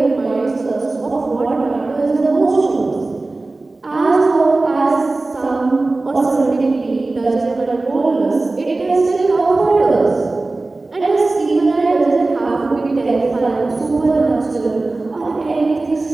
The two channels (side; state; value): left; quieter; 3.2 dB